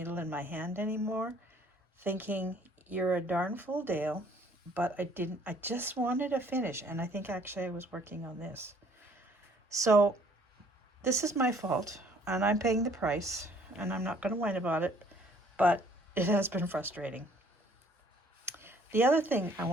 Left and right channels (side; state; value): both; normal; correlation 0.59